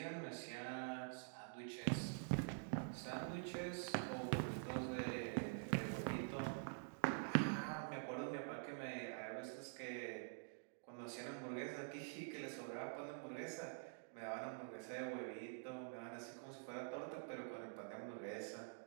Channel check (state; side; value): silent; left; digital silence